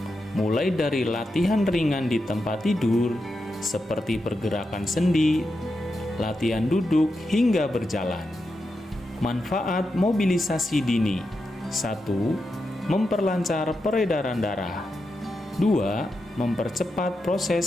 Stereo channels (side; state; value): both; normal; correlation 0.87